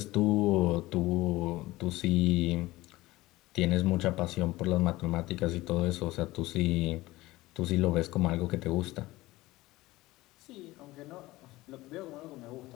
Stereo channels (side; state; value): right; quieter; 18.8 dB